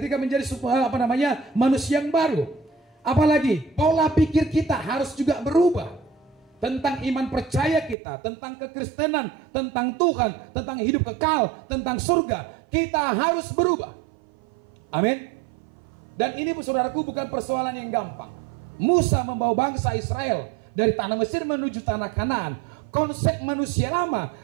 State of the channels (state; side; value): drops out; left; at 8.0 s